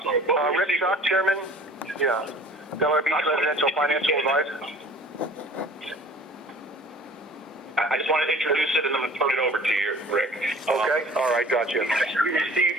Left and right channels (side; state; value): both; normal; correlation 0.47